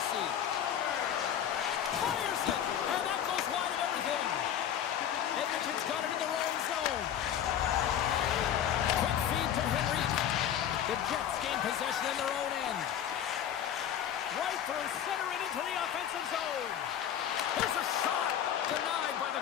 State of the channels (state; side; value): quieter; right; 9.8 dB